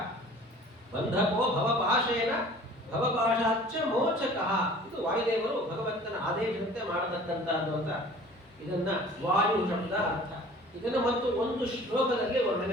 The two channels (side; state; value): both; normal; correlation 0.47